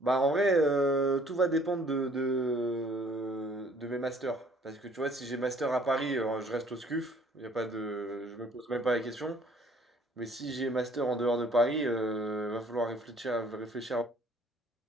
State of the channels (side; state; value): both; normal; correlation 0.58